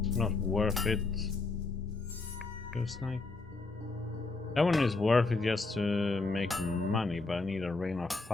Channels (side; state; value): right; quieter; 3.6 dB